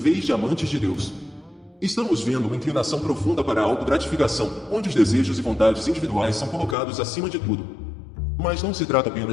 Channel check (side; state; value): right; drops out; at 6.8 s